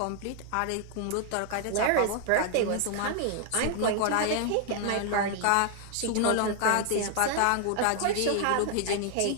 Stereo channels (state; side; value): different; both; correlation 0.00